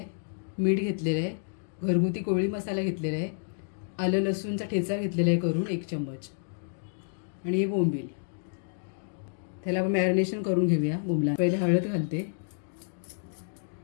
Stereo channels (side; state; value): right; silent; digital silence